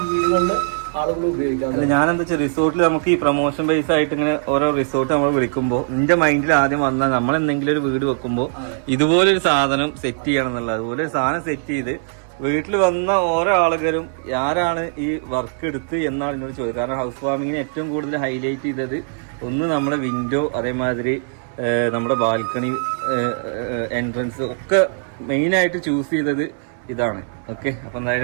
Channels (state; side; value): silent; left; digital silence